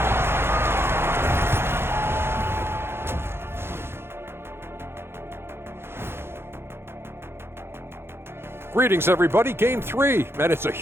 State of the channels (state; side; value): late; left; 0.12 ms